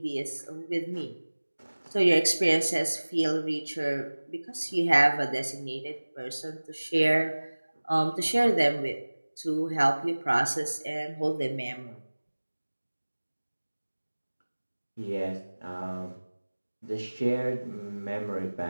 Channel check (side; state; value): both; inverted; correlation -1.00